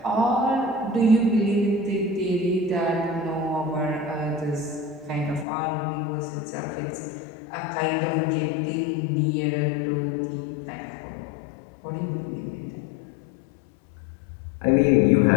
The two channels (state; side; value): drops out; right; at 5.5 s